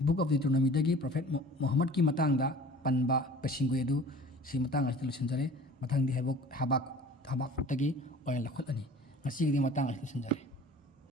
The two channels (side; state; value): both; normal; correlation 0.45